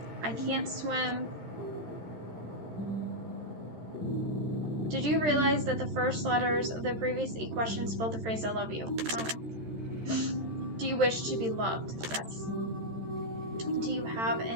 I can't swim. Did you realize that the first letters of the previous 8 questions spelled the phrase I love you? No. Do you wish to be loved? Yes. Do you have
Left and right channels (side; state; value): left; late; 13 ms